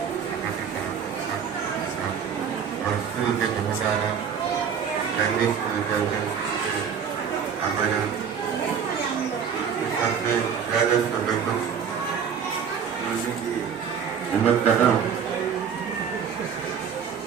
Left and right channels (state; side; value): quieter; left; 7.3 dB